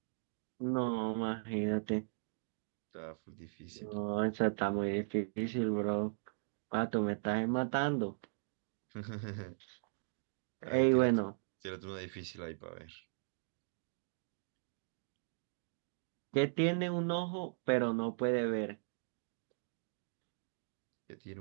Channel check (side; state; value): left; silent; digital silence